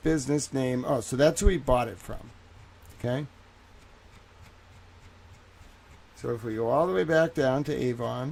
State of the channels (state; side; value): identical; both; correlation 1.00